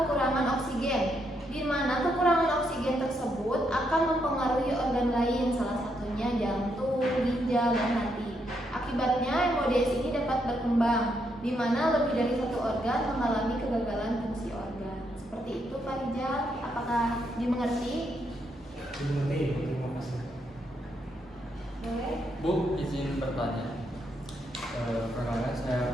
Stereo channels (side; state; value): both; normal; correlation 0.78